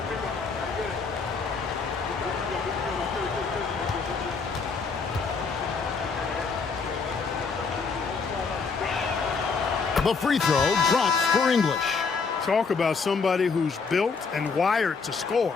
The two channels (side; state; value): right; quieter; 4.9 dB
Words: The free throw drops for English. Talk about somebody who's built and wired to score.